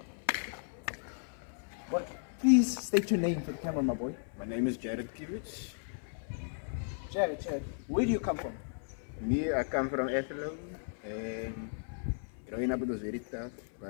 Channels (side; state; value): right; silent; 54 dB below the other